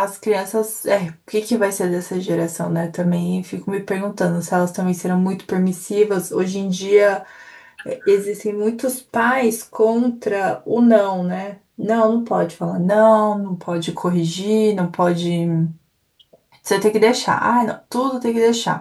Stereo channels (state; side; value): identical; both; correlation 1.00